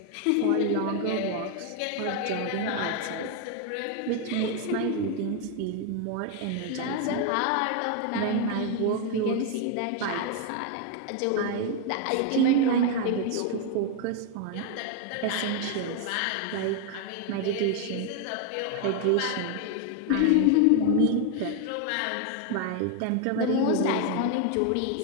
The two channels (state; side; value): different; both; correlation 0.01